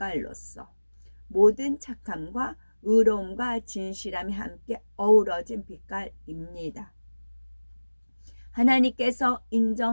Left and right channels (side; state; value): both; inverted; correlation -1.00